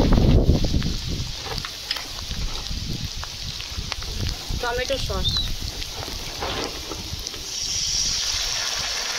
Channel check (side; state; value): both; identical; correlation 1.00